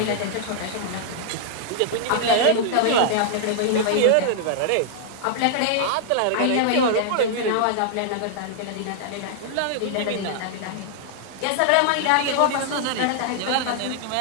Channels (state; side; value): different; both; correlation -0.01